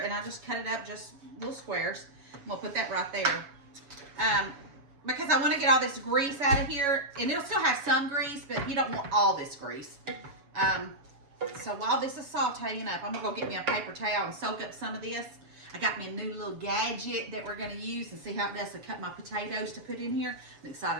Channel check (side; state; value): left; late; 7.2 ms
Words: and I just cut it up just little squares. I'm gonna put that right there. Because I wanna get all this grease out of here and it'll still have some grease, but you don't want all this grease. So while this is sauteing up, I'm gonna go get me a paper towel and soak up some of this. I got me a new little gadget that we're gonna use and see how it does to cut my potatoes to put in here. I'm